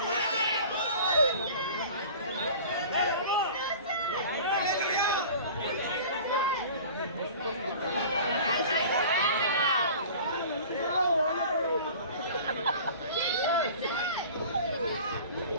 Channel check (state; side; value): inverted; both; correlation -0.41